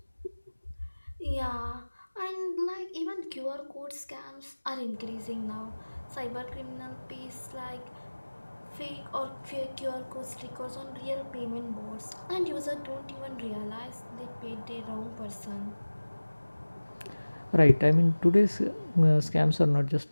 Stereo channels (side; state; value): both; inverted; correlation -1.00